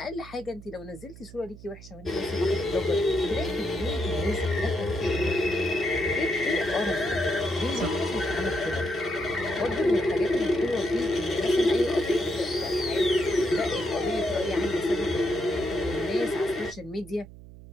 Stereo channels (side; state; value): right; noise; hum, 17 dB below the sound